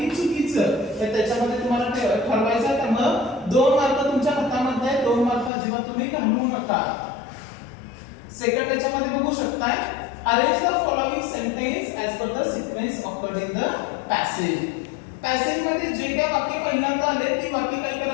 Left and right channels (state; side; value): drops out; right; at 5.5 s